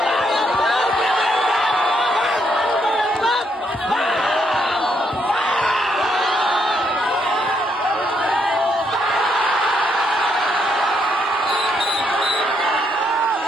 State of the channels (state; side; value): normal; both; correlation 0.75